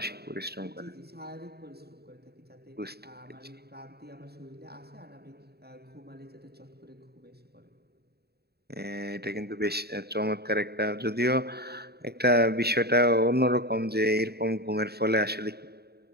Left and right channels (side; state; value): left; late; 0.47 ms